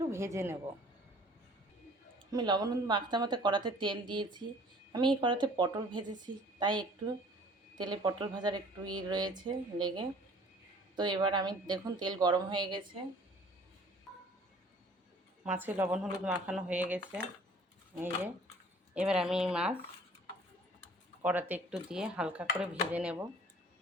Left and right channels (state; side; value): normal; both; correlation 0.52